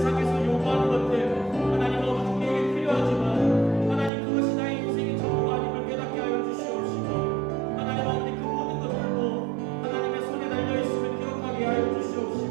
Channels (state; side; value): drops out; left; at 4.1 s